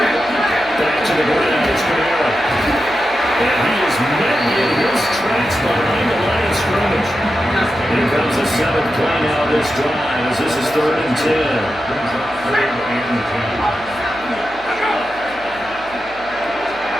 Back to the ground, it's Camara. And he is met in his tracks behind the line of scrimmage. Here comes the 7th play now of this drive as this is 3rd and 10.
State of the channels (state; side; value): noise; right; hum, 22 dB below the sound